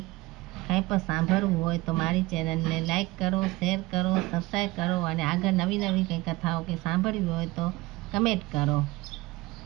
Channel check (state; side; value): quieter; left; 20.5 dB